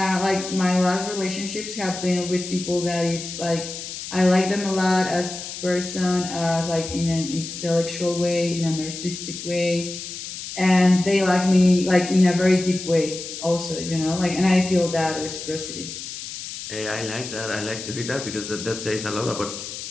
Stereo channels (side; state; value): left; noise; hiss, 9 dB below the sound